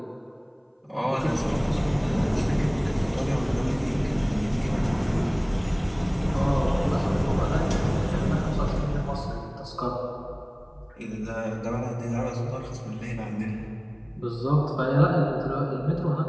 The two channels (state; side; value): identical; both; correlation 1.00